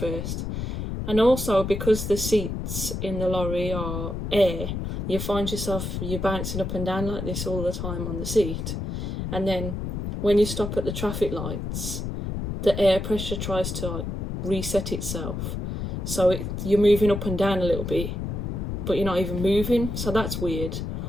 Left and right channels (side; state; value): left; noise; rumble, 4 dB below the sound